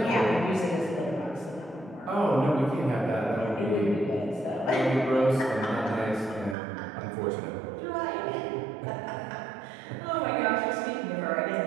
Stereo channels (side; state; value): left; drops out; at 6.6 s